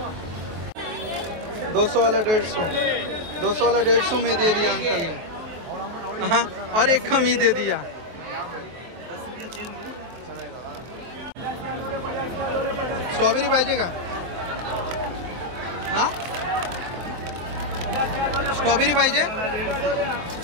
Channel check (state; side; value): late; left; 23 ms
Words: 200 वाला 150, 200 वाला 150 में दे दिया अंकल ने. हाँ, और एक कम ही दे दिया. स्ट्रॉबेरी पाहिजे का? हा स्ट्रॉबेरी पाहिजे.